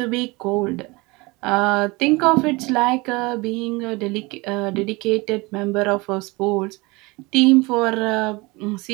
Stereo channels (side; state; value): left; quieter; 24.5 dB